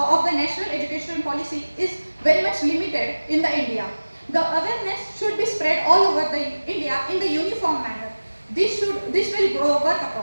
the National Education Policy is very much limited in the India. The awareness should be spread all over the India in the uniform manner. This will work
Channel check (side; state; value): both; inverted; correlation -1.00